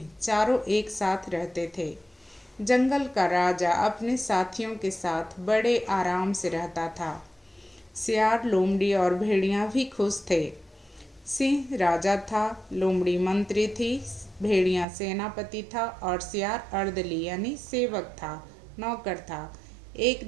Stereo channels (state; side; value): drops out; left; at 14.9 s